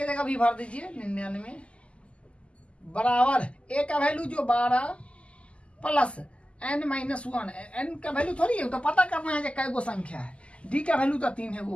जगह भी भर दीजिए 99 बराबर a का वैल्यू जो 12 प्लस n माइनस 1। n का वैल्यू थोड़ी है, तो पता करना है कि कै गो संख्या है। d का वैल्यू तो 3 है,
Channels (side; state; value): right; late; 0.056 ms